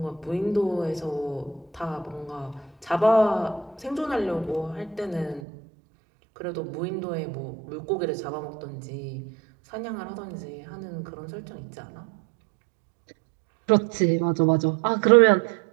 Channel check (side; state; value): left; drops out; at 5.4 s